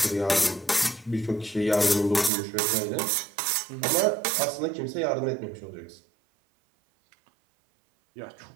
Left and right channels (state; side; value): drops out; left; at 2.3 s